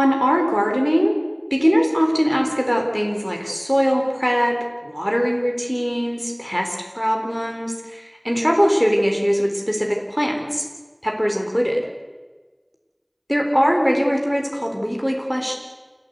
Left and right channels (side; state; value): both; identical; correlation 1.00